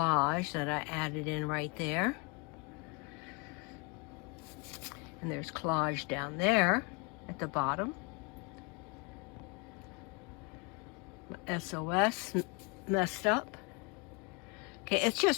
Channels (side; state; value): right; quieter; 31.2 dB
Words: that I added in right there. And there's collage down there at the bottom. SOS messed up. Okay,